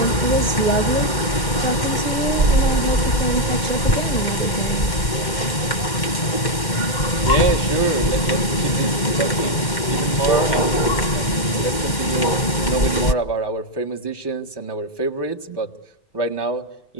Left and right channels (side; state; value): right; late; 2.1 ms